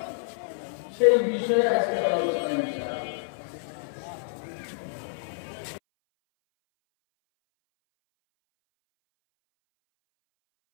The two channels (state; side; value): silent; right; 59 dB below the other